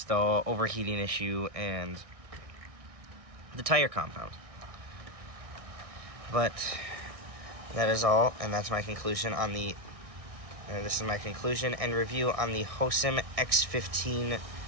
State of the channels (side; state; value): left; late; 1.6 ms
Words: the overheating issue and the tire compound. But that is all, and that's my conclusion on this is my conclusion and review on the Hosim X15